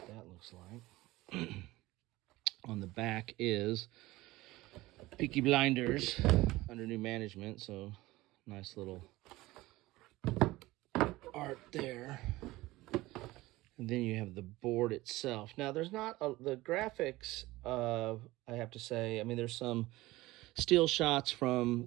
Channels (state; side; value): quieter; left; 18.9 dB